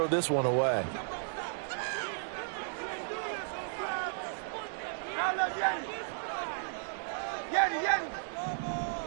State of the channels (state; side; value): silent; left; digital silence